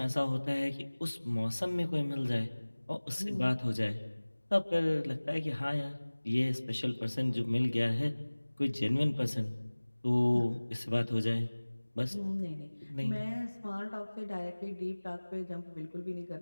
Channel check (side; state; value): both; inverted; correlation -1.00